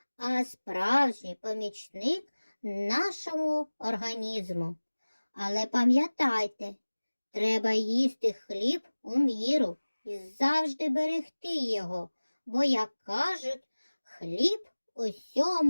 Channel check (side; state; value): both; inverted; correlation -1.00